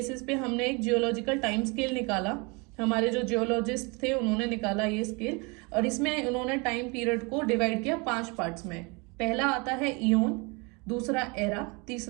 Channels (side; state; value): left; quieter; 29.1 dB